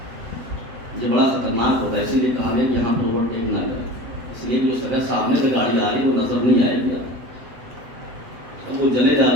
یہ بڑا خطرناک ہوتا ہے, اسی لیے کہا گیا کہ یہاں پر اوورٹیک نہ کریں, اس لیے کہ جو سگا سامنے سے گاڑی آ رہی ہے وہ نظر نہیں آئے گی. اب وہ چلے جا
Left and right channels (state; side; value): late; left; 7.9 ms